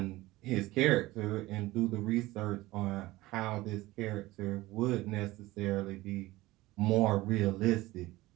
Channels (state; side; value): quieter; left; 18.7 dB